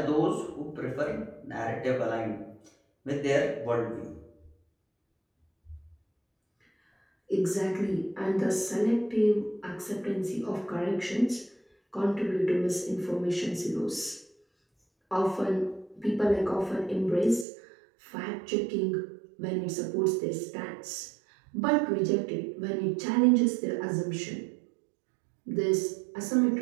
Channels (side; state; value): left; drops out; at 17.4 s